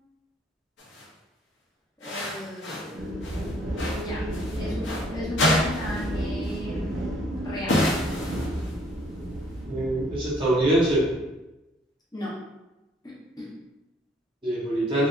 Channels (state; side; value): normal; both; correlation 0.62